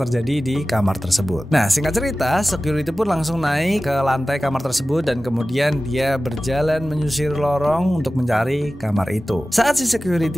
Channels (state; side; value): normal; both; correlation 0.96